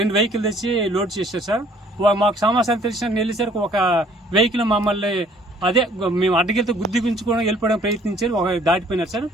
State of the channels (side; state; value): both; normal; correlation 0.57